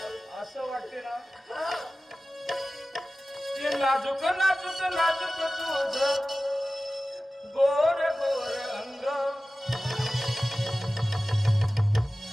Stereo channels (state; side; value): normal; both; correlation 0.96